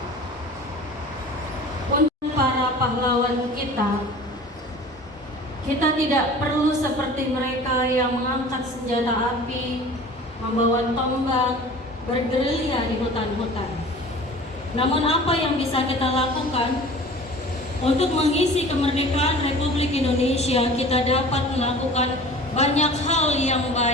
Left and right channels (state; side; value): normal; both; correlation 0.42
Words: Untuk para pahlawan kita tidak perlu seperti mereka yang mengangkat senjata api, membawa tombak, bergerilya di hutan-hutan. Namun apa yang bisa kita lakukan untuk mengisi kemerdekaan Republik Indonesia? Kita dapat melakukan banyak hal yang